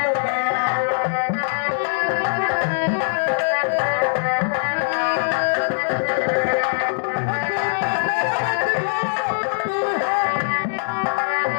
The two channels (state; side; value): silent; right; 65 dB below the other